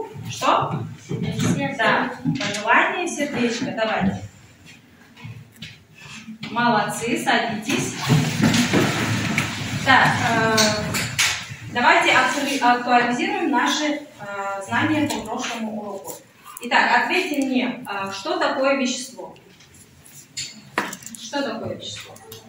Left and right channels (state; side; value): identical; both; correlation 1.00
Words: что? Да, пожелание сердечко. Давайте. Молодцы, садитесь. Так, давайте актуализируем наши знания по прошлому уроку. Итак, ответьте мне, что такое вещество? Что такое вещество?